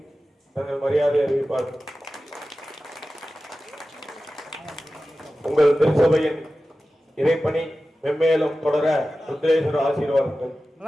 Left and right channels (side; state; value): both; normal; correlation 0.94